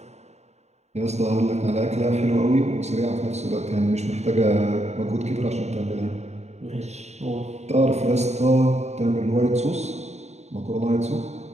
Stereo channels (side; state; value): left; late; 0.32 ms